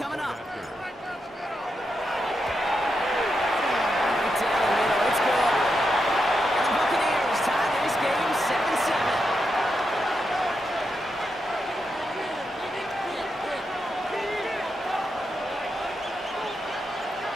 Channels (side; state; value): both; normal; correlation 0.85